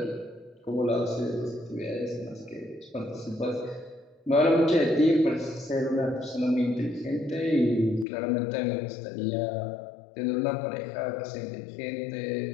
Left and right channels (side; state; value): right; drops out; at 8.1 s